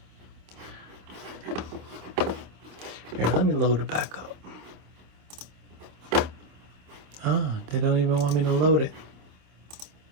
Here, let me load it back up. Oh, they don't even want me to load it.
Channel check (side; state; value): left; late; 27 ms